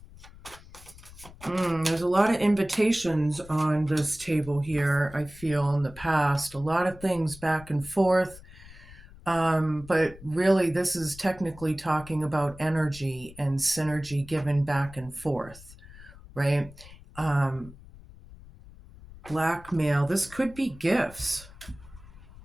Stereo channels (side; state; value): left; noise; rumble, 19 dB below the sound